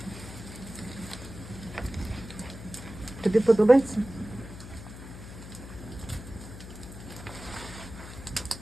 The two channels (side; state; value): left; noise; hum, 13 dB below the sound